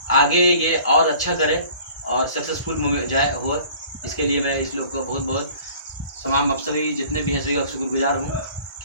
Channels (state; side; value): inverted; both; correlation -0.50